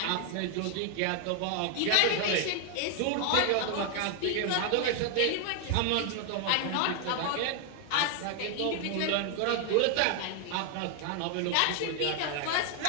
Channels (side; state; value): both; different; correlation 0.00